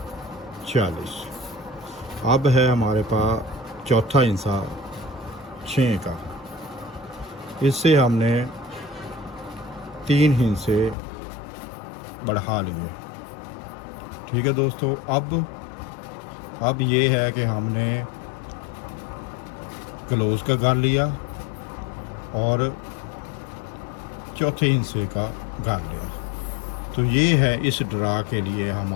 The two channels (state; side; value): drops out; right; at 11.0 s